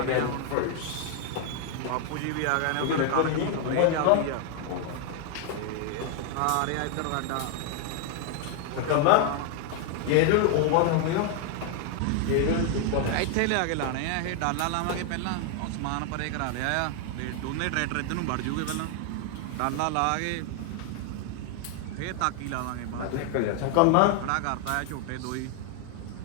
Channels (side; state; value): both; different; correlation 0.00